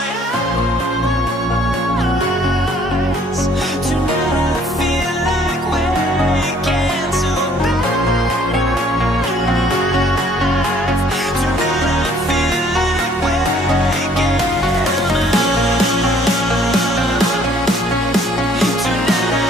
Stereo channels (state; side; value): normal; both; correlation 0.61